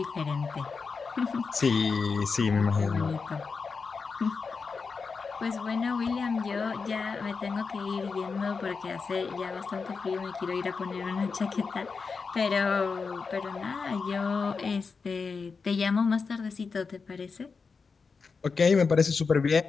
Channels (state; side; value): quieter; right; 4.9 dB